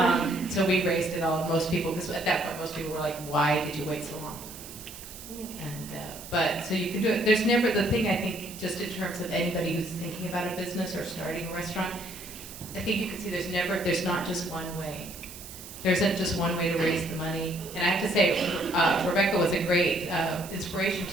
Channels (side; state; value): right; noise; hiss, 14 dB below the sound